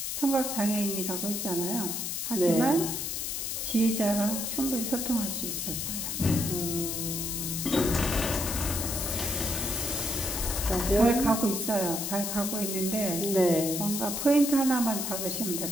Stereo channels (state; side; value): noise; left; hiss, 3 dB below the sound